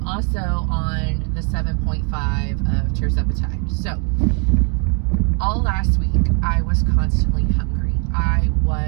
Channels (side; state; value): left; quieter; 36.9 dB